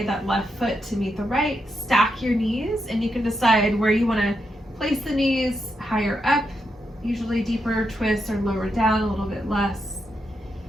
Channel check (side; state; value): both; normal; correlation 0.83